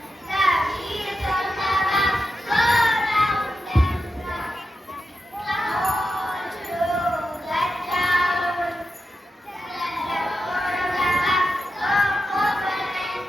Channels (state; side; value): normal; both; correlation 0.89